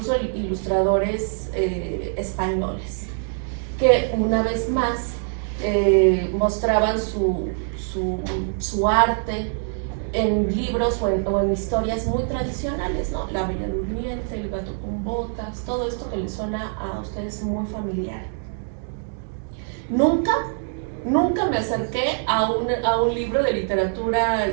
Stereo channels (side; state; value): left; silent; 63 dB below the other